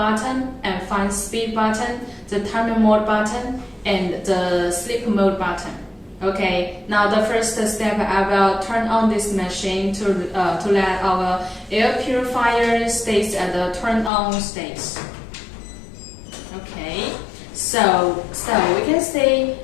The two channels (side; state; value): right; drops out; at 14.1 s